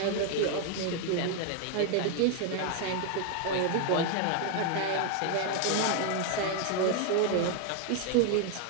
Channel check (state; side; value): different; both; correlation 0.01